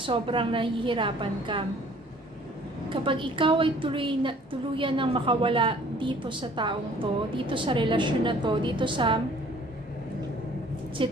nahihirapan ka. Kapag ikaw ay tuluyan ng makawala dito sa taong to, dito sa relasyon na to, dito sa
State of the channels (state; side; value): normal; both; correlation 0.54